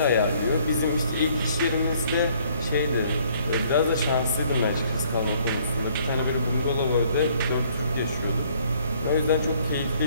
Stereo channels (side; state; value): both; inverted; correlation -0.62